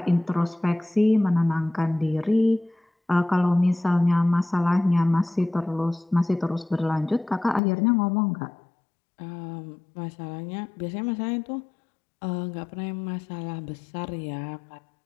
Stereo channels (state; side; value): drops out; right; at 7.6 s